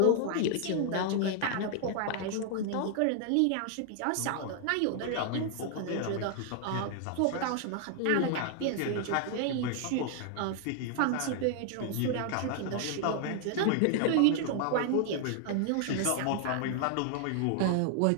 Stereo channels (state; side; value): different; both; correlation 0.00